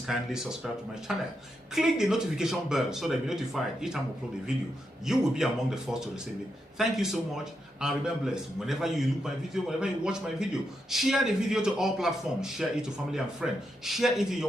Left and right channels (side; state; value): both; normal; correlation 0.84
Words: kindly subscribe to my channel. Click the notification bell so that you'll be notified each time I upload a video. You will be among the first to receive it. Thank you so much and remember blessed. Whenever you look my video, whenever you watch my video, share the video to all platforms. Share it to family and friends. Share it in